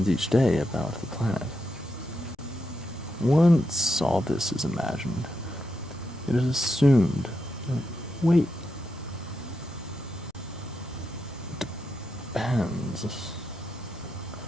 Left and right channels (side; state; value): both; normal; correlation 0.84